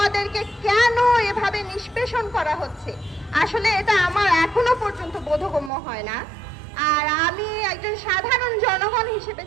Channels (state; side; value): drops out; left; at 5.7 s